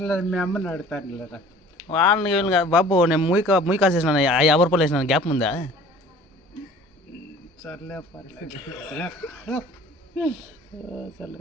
మీ అమ్మని అడుగుతాను లేదా వాళ్ళని వీళ్ళని కాదు బాబు. నేను మూయి కాసేసినాను 50 రూపాయలు వేసినాను. గ్యాప్ ఉందా? సర్లే పర్లేదు. సర్లే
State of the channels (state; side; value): normal; both; correlation 0.48